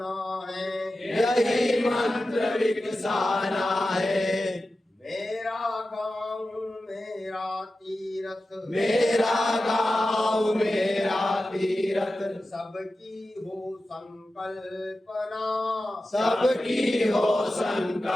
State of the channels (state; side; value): normal; both; correlation 0.93